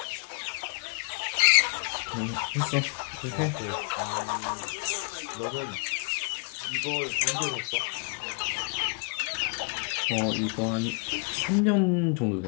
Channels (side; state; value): right; quieter; 39.4 dB